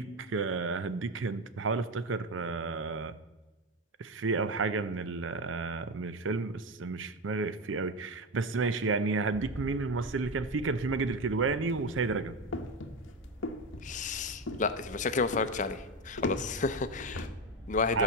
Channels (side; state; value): both; normal; correlation 0.15